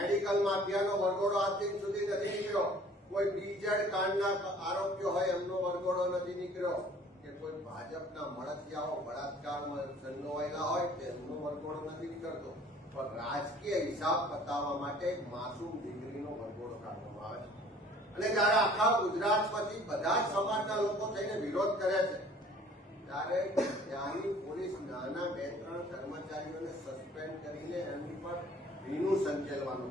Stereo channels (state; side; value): normal; both; correlation 0.52